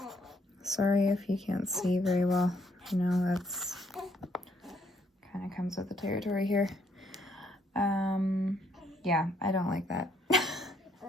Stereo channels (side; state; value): both; normal; correlation 0.70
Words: Sorry if you can't see very well. You know, that's kind of comes with the territory here. Yeah, I don't like that.